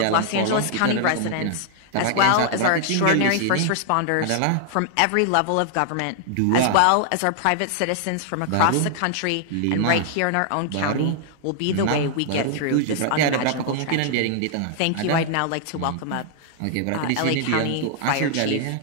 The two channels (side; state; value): both; different; correlation 0.00